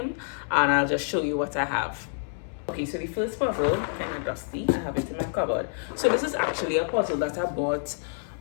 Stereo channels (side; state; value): right; silent; 60 dB below the other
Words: and I'll just show you what I have. Okay, so the first puzzle, kind of dusty, I have it in my cupboard. So this is actually a puzzle that I bought